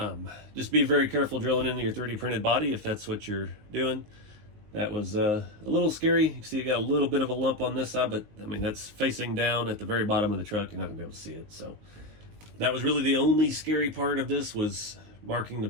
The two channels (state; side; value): late; left; 19 ms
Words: Just be very careful drilling into your 3D printed body if that's what you're doing. That was a little scary. You can see it got a little bit of a lump on this side, but I mean, that's facing down at the very bottom of the truck. You're not gonna be able to see it. So that was really the only scary part of this, was marking the